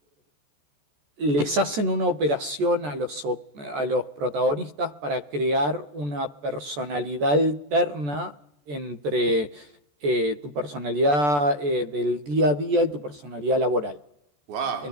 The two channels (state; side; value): late; left; 14 ms